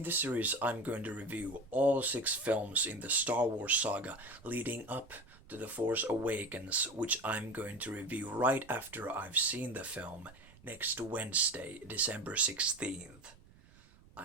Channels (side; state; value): right; noise; rumble, 24 dB below the sound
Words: this series, I'm going to review all 6 films in the Star Wars saga leading up to the Force Awakens, which I'm going to review right after I've seen the film next Wednesday, December 16th.